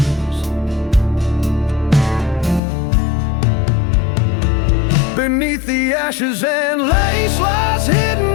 Beneath the ashes and lace lies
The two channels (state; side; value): drops out; right; at 2.6 s